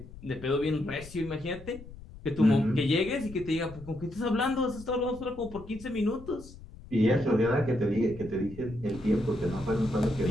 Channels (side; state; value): left; noise; rumble, 17 dB below the sound